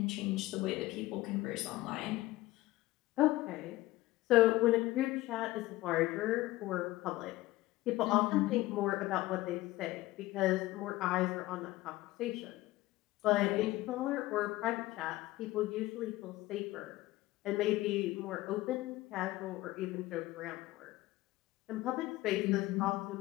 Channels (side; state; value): right; quieter; 17.9 dB